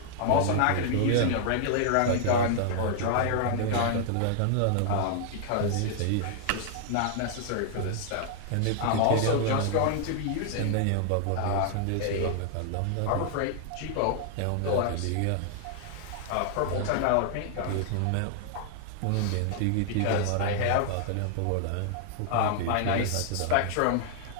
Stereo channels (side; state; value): both; different; correlation -0.01